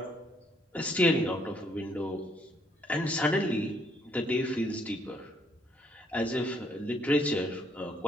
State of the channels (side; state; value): both; normal; correlation 0.68